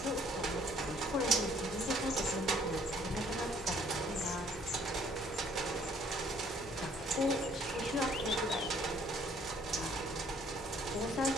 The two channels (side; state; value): both; normal; correlation 0.61